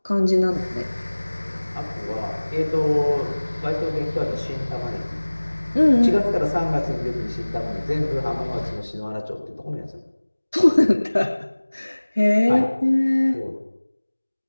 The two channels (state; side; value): inverted; both; correlation -1.00